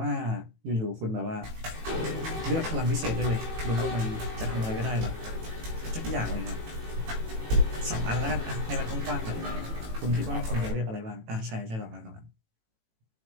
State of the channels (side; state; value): left; late; 18 ms